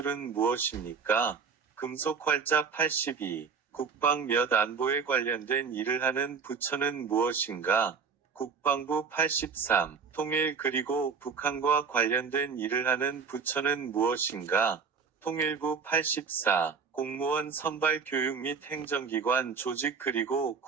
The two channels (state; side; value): quieter; left; 5.7 dB